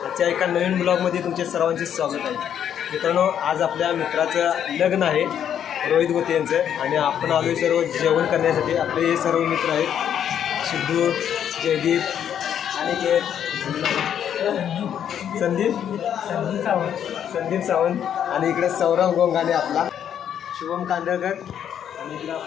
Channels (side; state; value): right; quieter; 9.3 dB